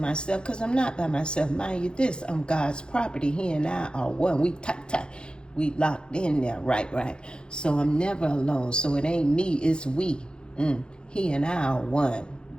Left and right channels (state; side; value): late; right; 0.050 ms